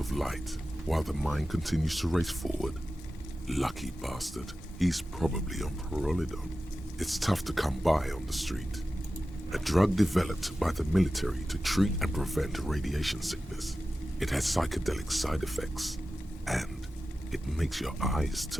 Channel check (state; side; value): normal; both; correlation 0.94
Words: light, while the mind continues to race forward. Lucky bastard. He's probably on Parolidon. It's tough to come by on the street. A drug developed by the military to treat and prevent radiation sickness. It has psychedelic side effects. and it makes your eyes